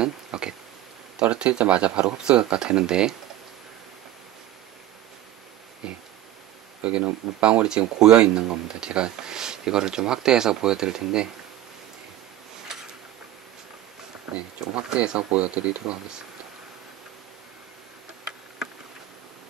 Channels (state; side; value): quieter; left; 13.5 dB